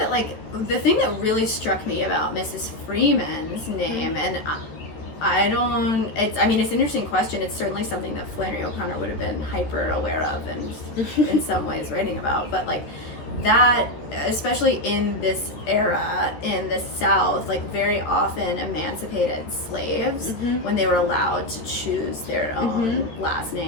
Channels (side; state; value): right; late; 14 ms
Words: like the thing that really struck me about Mrs. Freeman's name, and it's an interesting question. It's certainly something that Flannery O'Connor would have been hyper aware of and in some ways writing about, but like that, especially in this era in the South, like very often emancipated slaves, when they were allowed to choose their own last